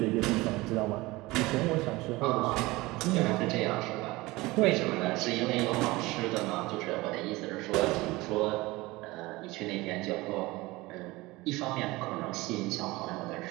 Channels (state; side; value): quieter; left; 21.0 dB